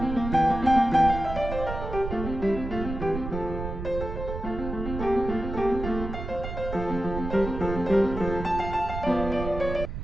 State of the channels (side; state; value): right; noise; rumble, 6 dB below the sound